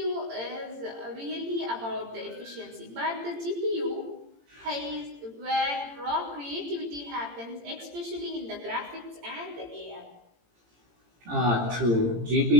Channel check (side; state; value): left; late; 18 ms